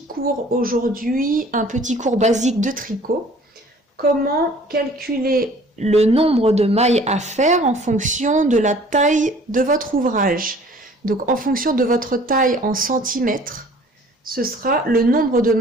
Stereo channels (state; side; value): normal; both; correlation 0.52